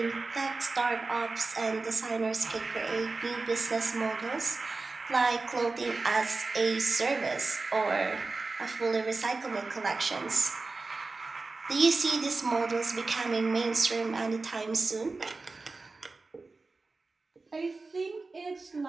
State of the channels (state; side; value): quieter; left; 3.7 dB